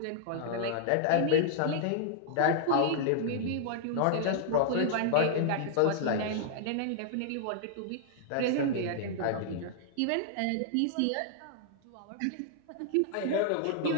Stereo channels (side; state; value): both; different; correlation -0.01